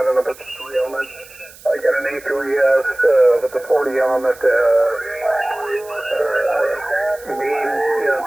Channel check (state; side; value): noise; right; hiss, 21 dB below the sound